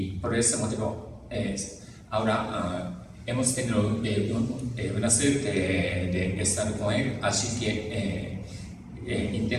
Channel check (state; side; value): identical; both; correlation 1.00